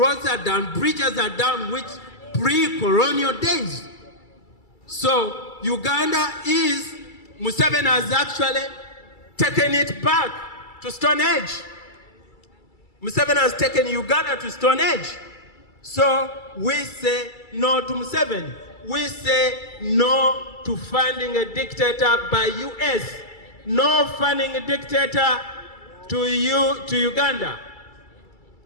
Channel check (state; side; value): late; right; 2.3 ms